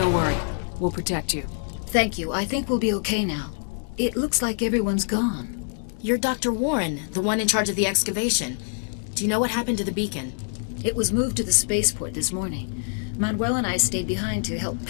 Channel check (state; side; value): silent; right; digital silence